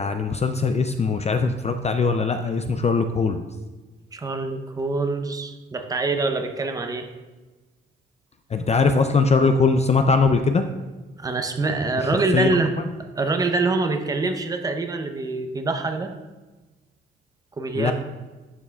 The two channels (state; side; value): normal; both; correlation 0.56